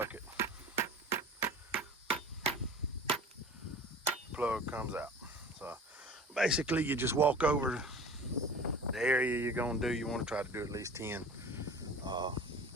plug comes out. So basically you just walk over the area you're gonna do. You want to try to do at least 10 or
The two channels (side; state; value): both; normal; correlation 0.40